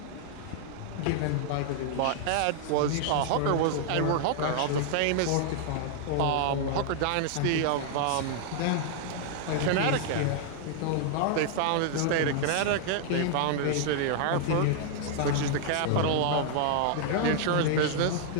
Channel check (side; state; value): both; different; correlation -0.01